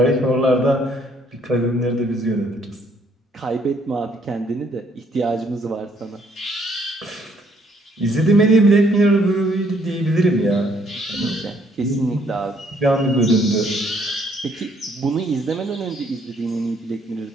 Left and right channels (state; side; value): normal; both; correlation 0.66